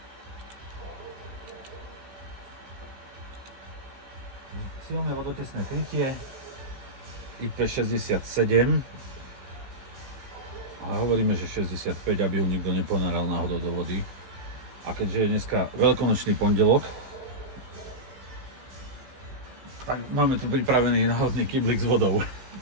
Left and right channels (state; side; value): late; left; 15 ms